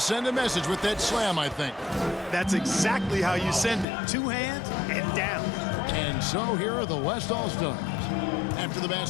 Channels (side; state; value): right; drops out; at 3.9 s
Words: a message with that slam, I think. That's exactly how you send it. 2 hands and down. And so here are the West All-Stars. After the